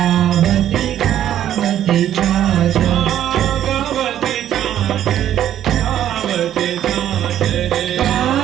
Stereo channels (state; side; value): quieter; left; 11.2 dB